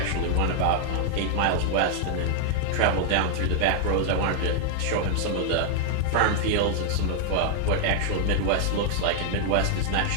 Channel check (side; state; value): both; different; correlation 0.00